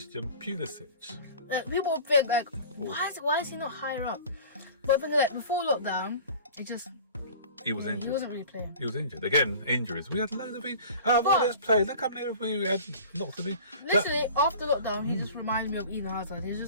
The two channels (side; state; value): both; inverted; correlation -0.41